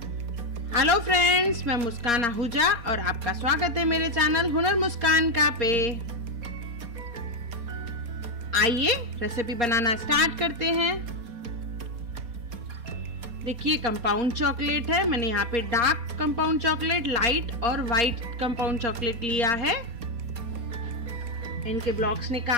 हेलो फ्रेंड्स, मैं मुस्कान आहूजा और आपका स्वागत है मेरे चैनल हुनर मुस्कान का पे। आइए रेसिपी बनाना स्टार्ट करते हैं। देखिए कंपाउंड चॉकलेट है, मैंने यहाँ पे डार्क कंपाउंड चॉकलेट, लाइट और वाइट कंपाउंड चॉकलेट लिया है। इनके ब्लॉक्स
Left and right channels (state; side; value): late; left; 4.2 ms